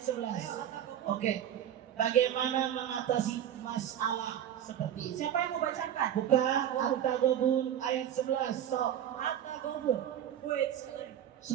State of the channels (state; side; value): quieter; left; 10.4 dB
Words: Oke. Bagaimana mengatasi masalah seperti ini? Siapa yang mau bacakan? Buka At-Taghabun ayat 11. Sok. Atta Kobus. Wait,